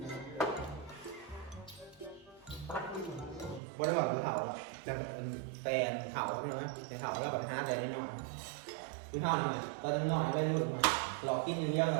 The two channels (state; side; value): drops out; left; at 3.6 s